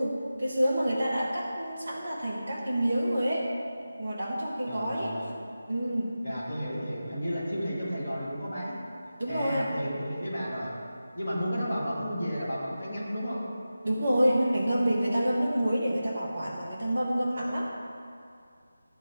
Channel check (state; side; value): inverted; both; correlation -0.94